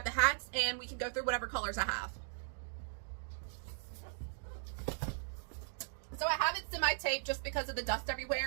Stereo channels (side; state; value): left; silent; digital silence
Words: the hats and we can go through whatever colors I have. So I have it semi-taped just because of the dust